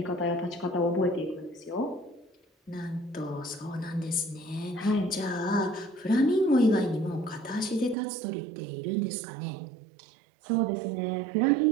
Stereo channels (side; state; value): left; drops out; at 8.0 s